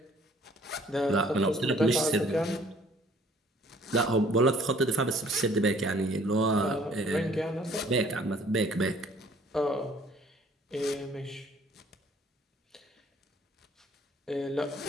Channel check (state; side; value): normal; both; correlation 0.57